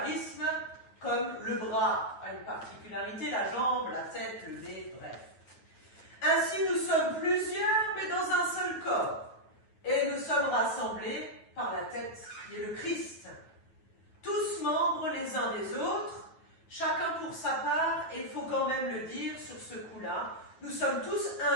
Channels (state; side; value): late; right; 9.3 ms